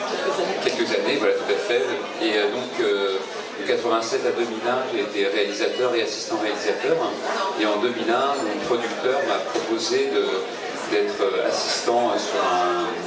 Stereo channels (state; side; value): identical; both; correlation 1.00